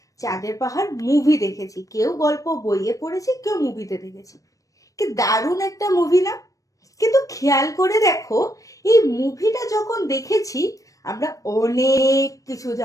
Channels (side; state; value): right; late; 0.16 ms